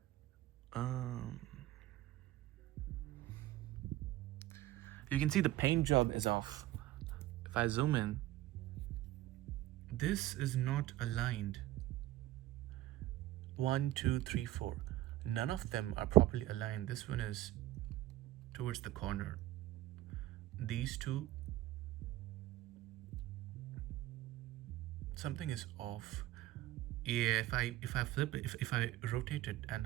You can see the paint job is off. If I zoom in, this is not aligned. 1, 2, 3, 4. None of them are properly aligned. This one is towards the corner. These two, something is off. Yeah, if I flip it, if I rotate it and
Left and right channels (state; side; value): quieter; left; 15.7 dB